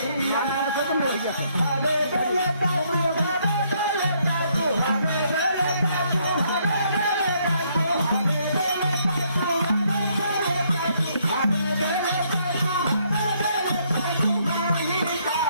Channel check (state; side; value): inverted; both; correlation -0.70